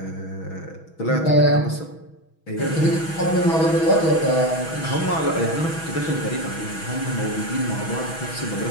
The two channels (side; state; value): right; late; 6.2 ms